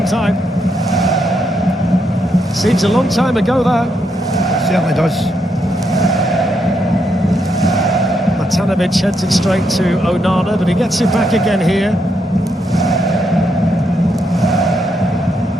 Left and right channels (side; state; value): both; normal; correlation 0.79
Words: time. Seems a long time ago, that. Certainly does. Matanovic heads it straight to Onana, but he gets it back again here.